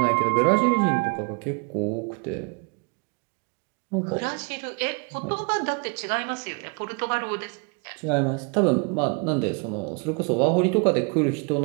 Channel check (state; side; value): quieter; left; 33.8 dB